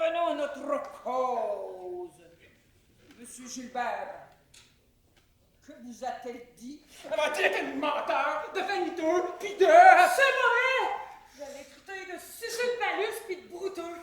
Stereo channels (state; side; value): identical; both; correlation 1.00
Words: à notre cause. Monsieur Gilbert, que vous a-t-elle dit? Elle m'a traité de menteur, de vaniteux, puis de... C'est vrai! Je l'ai traité de suceux de palus puis de brouteux.